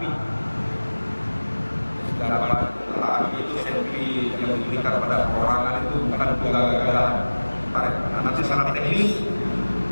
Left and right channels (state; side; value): inverted; both; correlation -1.00